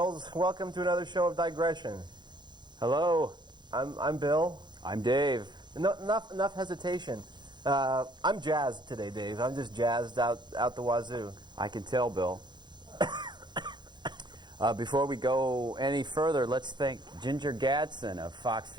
Welcome to another show of Digression. Hello, I'm Bill. I'm Dave. Enough hesitation. I'm jazzed today, Dave. I'm just jazzed out the wazoo. I can tell, Bill. Before we go any further, let's thank Ginger Gadsden of Fox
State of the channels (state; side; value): late; left; 0.21 ms